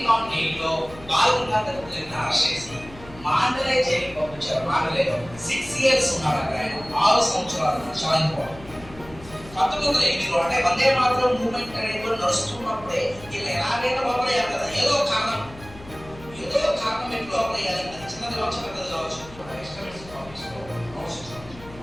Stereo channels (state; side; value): noise; left; hum, 19 dB below the sound